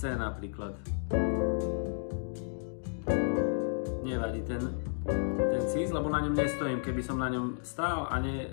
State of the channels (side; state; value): right; silent; digital silence